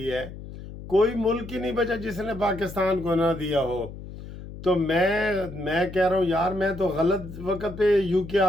है। कोई मुल्क ही नहीं बचा जिसने पाकिस्तान को ना दिया हो। तो मैं कह रहा हूँ यार, मैं तो गलत वक्त पे यूके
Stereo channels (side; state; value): left; noise; hum, 13 dB below the sound